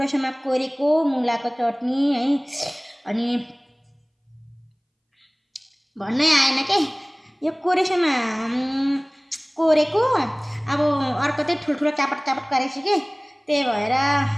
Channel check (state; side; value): identical; both; correlation 1.00